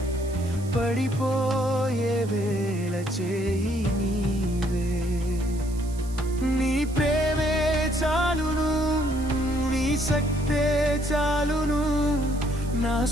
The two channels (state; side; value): noise; right; hiss, 19 dB below the sound